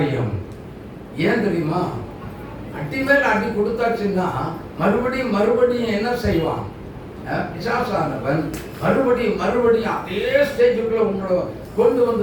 ஏன் தெரியுமா? அடி மேல் அடி கொடுத்தாச்சுன்னா மறுபடியும் என்ன செய்வான்? பிசாசானவன் மறுபடியும் அதே ஸ்டேஜுக்குள்ள உங்களை கொண்டு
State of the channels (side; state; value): both; identical; correlation 1.00